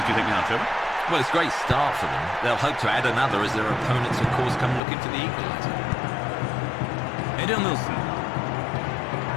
do you think now, Trevor? Well, it's a great start for them. They'll hope to add another as their opponents, of course, come looking for the equaliser. Edenilson.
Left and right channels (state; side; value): drops out; right; at 4.8 s